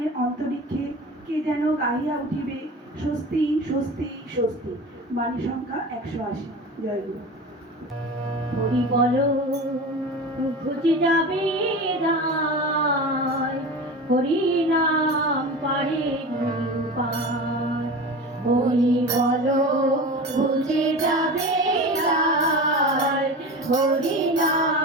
অন্তরিক্ষে কে যেন গাহিয়া উঠিবে, স্বস্তি স্বস্তি স্বস্তি। বাণী সংখ্যা 180। জয় গুরু। হরি বলো ঘুচে যাবে দায়, হরি নাম পারে পার। হরি বলো ঘুচে যাবে দায়, হরি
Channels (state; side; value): normal; both; correlation 0.31